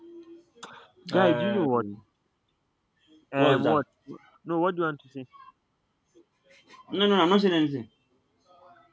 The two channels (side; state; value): both; identical; correlation 1.00